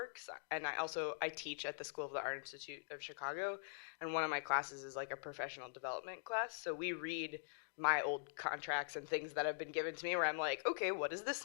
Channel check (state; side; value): silent; right; digital silence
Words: and I teach at the School of the Art Institute of Chicago, and one of my classes is like a professional development class. So we read my old contracts and things that have been given to me where I'm like, okay, what does this